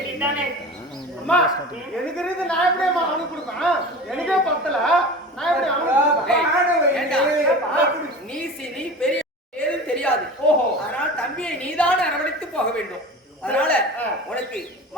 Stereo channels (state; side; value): normal; both; correlation 0.34